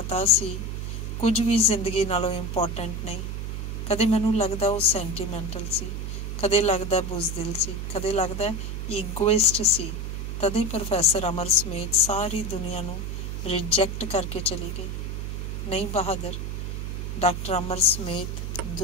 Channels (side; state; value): right; noise; hum, 4 dB below the sound